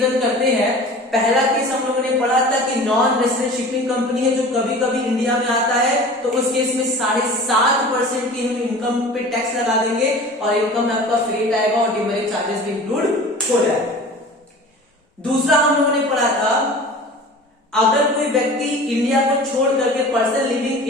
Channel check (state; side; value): normal; both; correlation 0.39